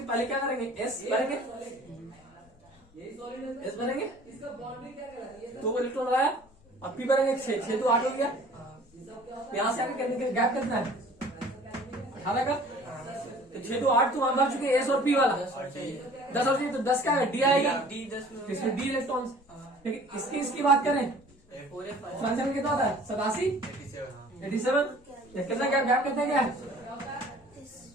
पहले क्या करेंगे, एस भरेंगे, एस भरेंगे, तो वो इलेक्ट्रॉन लगाया, और पी भरेंगे 6 तो 8 हो गया। यहां से आगे करने के गैप कितना है, 18 का। तो 6 तो 8 तो वहां भर चुके एस और पी वाला, 10 और 3 तो 10 का है, डी आएगा, इसमें डी इलेक्ट्रॉन। लेकिन इसकी बात करें, फ्रांसियम में कितना होता है, 87 87। कितना गैप कितना क्या है,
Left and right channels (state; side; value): noise; left; rumble, 28 dB below the sound